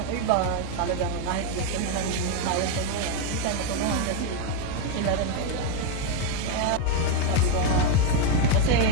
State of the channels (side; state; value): both; different; correlation 0.02